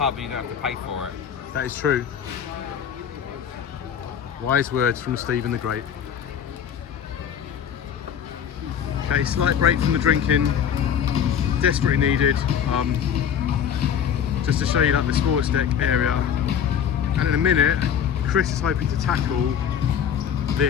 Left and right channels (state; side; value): quieter; right; 8.4 dB